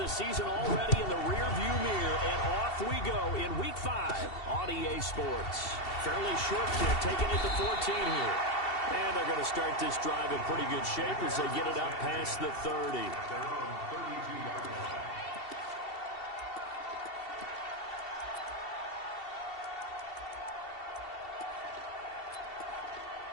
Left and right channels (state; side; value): late; right; 2.7 ms